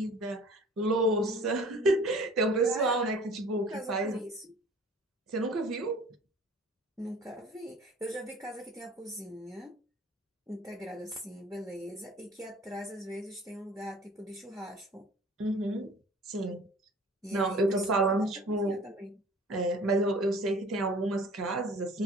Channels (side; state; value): both; normal; correlation 0.47